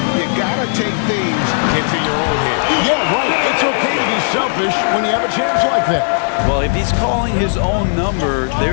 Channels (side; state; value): right; silent; digital silence